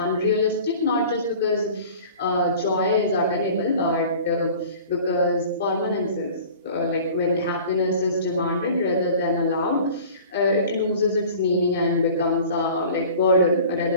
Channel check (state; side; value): inverted; both; correlation -0.44